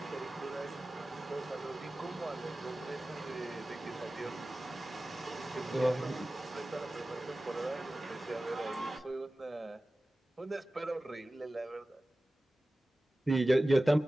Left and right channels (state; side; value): normal; both; correlation 0.96